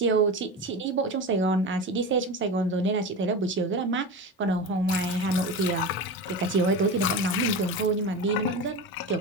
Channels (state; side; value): normal; both; correlation 0.25